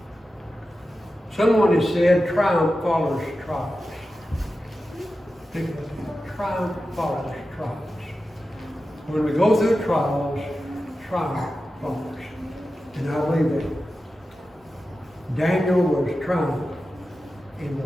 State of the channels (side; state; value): both; normal; correlation 0.92